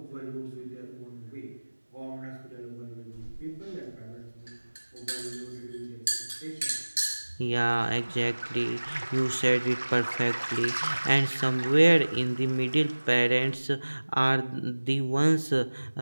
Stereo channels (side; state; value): both; inverted; correlation -1.00